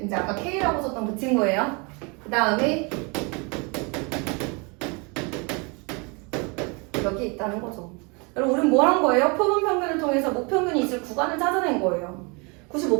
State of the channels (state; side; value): quieter; left; 31.2 dB